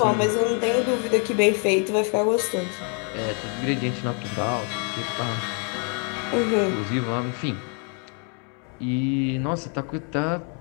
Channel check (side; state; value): right; quieter; 39.6 dB